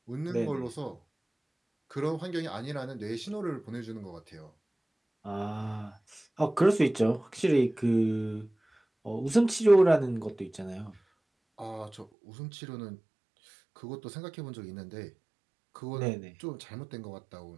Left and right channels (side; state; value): left; drops out; at 12.1 s